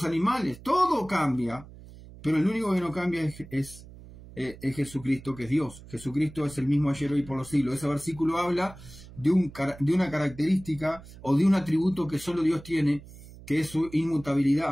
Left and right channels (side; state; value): right; noise; hum, 18 dB below the sound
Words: animales, todo cambia, pero el único que no cambia es Jesucristo, que es Dios. Jesucristo es el mismo ayer, hoy y por los siglos. Ese versículo habla de una característica o de un atributo que solo Dios tiene, que es su